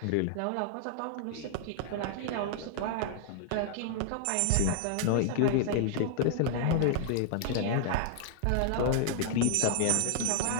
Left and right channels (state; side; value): different; both; correlation 0.00